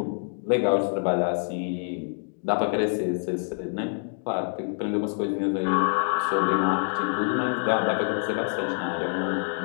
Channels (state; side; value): silent; right; 59 dB below the other